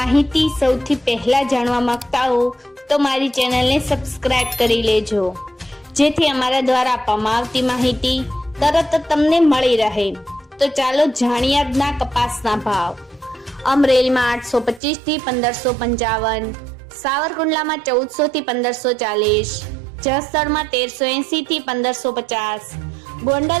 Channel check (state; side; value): drops out; left; at 14.8 s